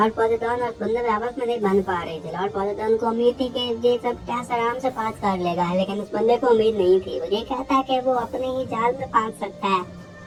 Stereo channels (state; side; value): identical; both; correlation 1.00